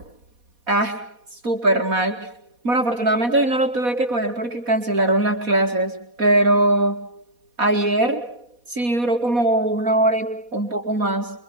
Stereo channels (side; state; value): left; late; 4.1 ms